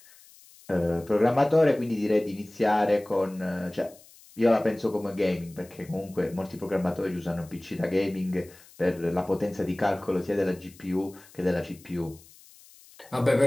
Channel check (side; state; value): left; noise; hiss, 24 dB below the sound